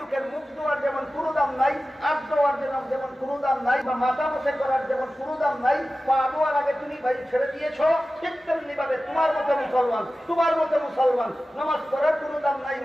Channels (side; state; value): both; normal; correlation 0.95